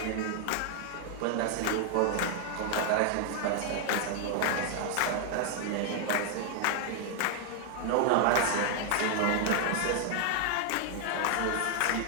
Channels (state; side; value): different; both; correlation 0.00